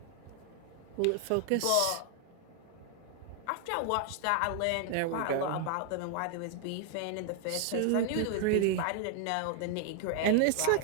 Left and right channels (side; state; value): both; different; correlation 0.00